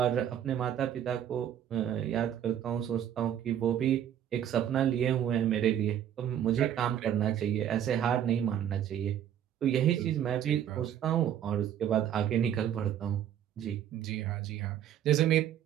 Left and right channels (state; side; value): quieter; left; 10.1 dB